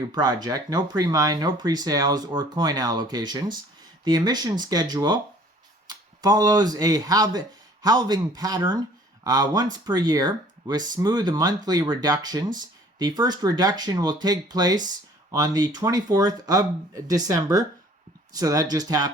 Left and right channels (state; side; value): normal; both; correlation 0.53